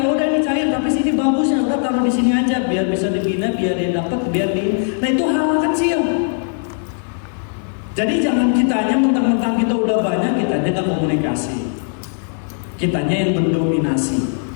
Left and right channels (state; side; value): silent; right; 62 dB below the other